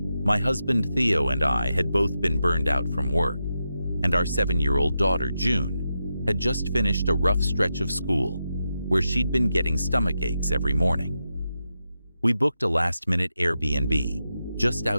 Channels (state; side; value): inverted; both; correlation -0.88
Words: My husband Theo and I had both been burned out from work, and our 7-year-old daughter June had just finished a rough stretch of school where she'd been getting stomach aches every morning. We booked a last-minute Airbnb just